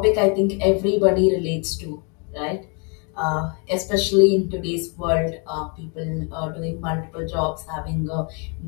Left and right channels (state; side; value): quieter; right; 36.2 dB